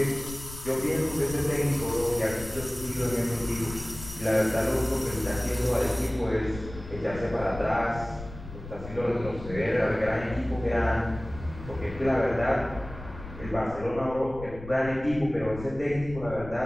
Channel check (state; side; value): noise; left; rumble, 13 dB below the sound